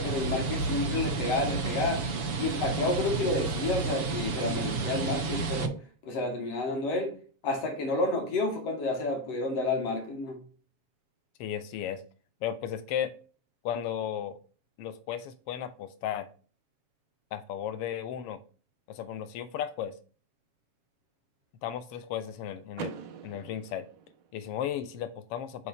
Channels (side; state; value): right; late; 7.0 ms